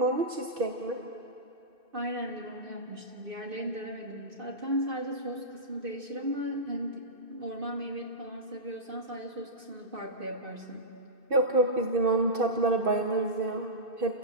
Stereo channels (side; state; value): left; late; 2.6 ms